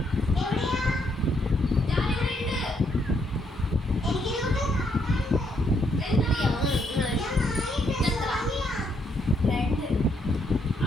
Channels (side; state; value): both; normal; correlation 0.74